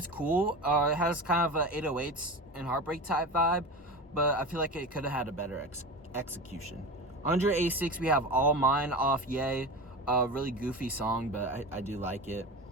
cool. It has kind of a 808s and Heartbreak type vibe, but I feel like it could have had a better execution. 186, we have All Mine off Ye. Really goofy song, but I do like it.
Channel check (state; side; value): normal; both; correlation 0.28